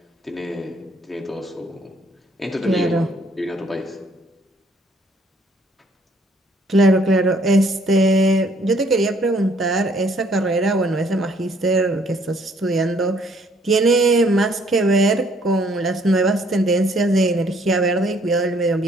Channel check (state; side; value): normal; both; correlation 0.64